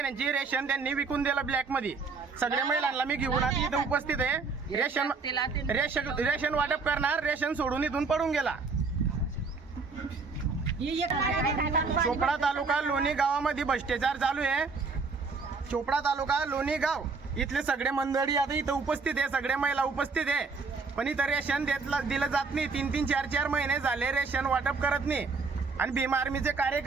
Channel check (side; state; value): left; quieter; 4.5 dB